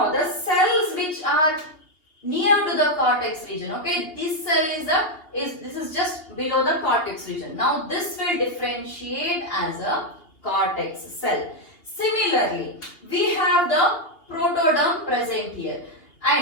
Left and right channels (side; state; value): right; late; 2.8 ms